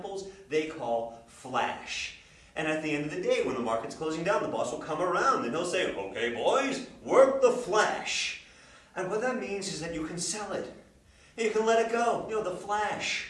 they call flash. And at the end of the day, when the market's closing down, the boss will come around and he'll say, okay, boys, work the flash. And what that means is that you can sell it. And you can let it go. You know, the flash.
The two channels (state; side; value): identical; both; correlation 1.00